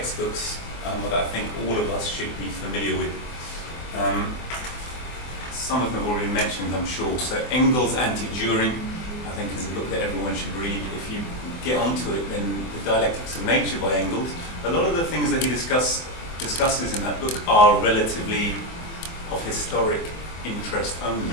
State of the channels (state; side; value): late; right; 24 ms